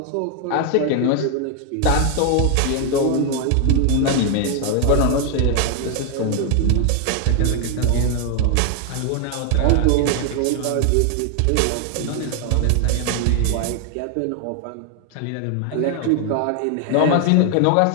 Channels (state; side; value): different; both; correlation 0.00